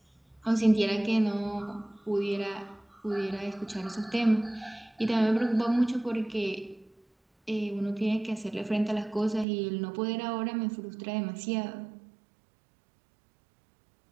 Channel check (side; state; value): left; drops out; at 9.5 s